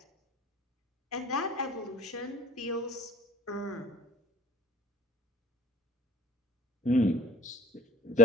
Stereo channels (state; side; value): normal; both; correlation 0.43